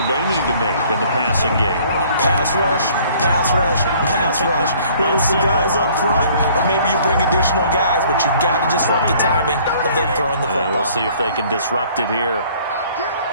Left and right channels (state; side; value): inverted; both; correlation -0.56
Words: they need to make in the passing game? Pass rush, pass rush, pass rush. Whether it's the guys up front or maybe you bring additional guys, but you've got to disrupt the timing of them throwing the football. We'll see if they can disrupt it here.